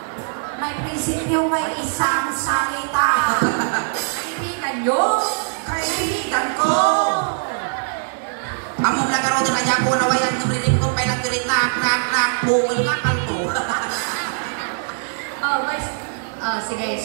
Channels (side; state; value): left; silent; digital silence